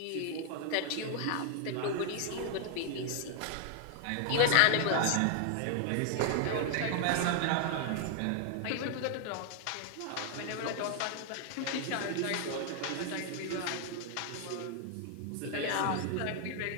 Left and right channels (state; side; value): different; both; correlation 0.00